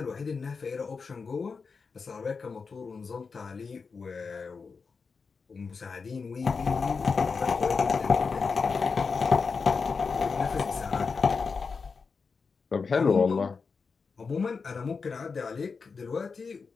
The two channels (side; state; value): right; quieter; 5.0 dB